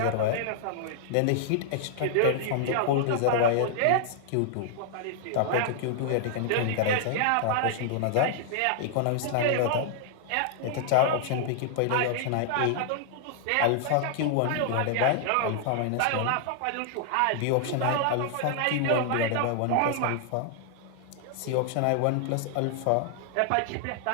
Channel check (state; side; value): different; both; correlation -0.01